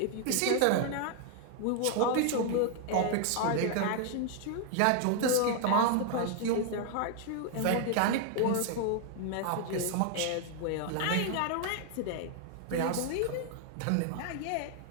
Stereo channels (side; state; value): both; different; correlation 0.00